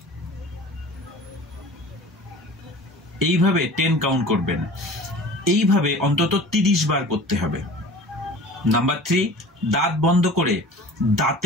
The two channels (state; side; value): normal; both; correlation 0.41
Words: এইভাবে 10 কাউন্ট করবেন। এইভাবে অন্তত 30 বার করতে হবে। নাম্বার 3, দাঁত বন্ধ করে